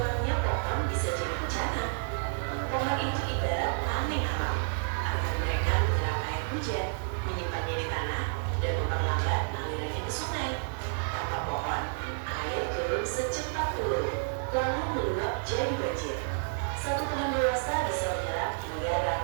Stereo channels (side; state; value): left; silent; digital silence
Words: pohon bisa jadi bencana. Pohon itu ibarat tameng alam. Akan mereka menyerap air hujan, menyimpannya di tanah, dan memperlambat alirannya ke sungai. Tanpa pohon, air turun secepat peluru, lalu meluap jadi banjir. Satu pohon dewasa bisa menyerap hingga